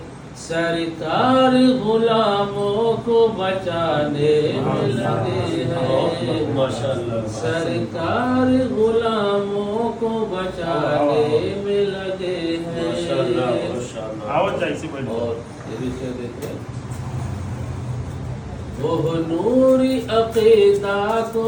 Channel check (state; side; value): identical; both; correlation 1.00